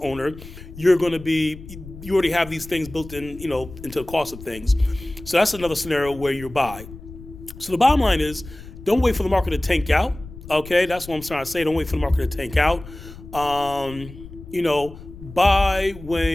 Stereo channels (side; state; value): left; noise; rumble, 15 dB below the sound